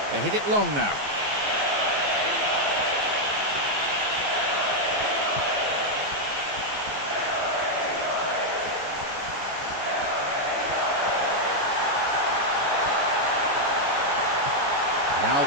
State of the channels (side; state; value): left; late; 14 ms